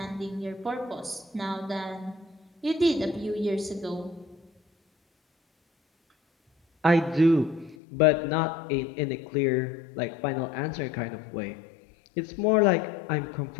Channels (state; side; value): drops out; right; at 7.8 s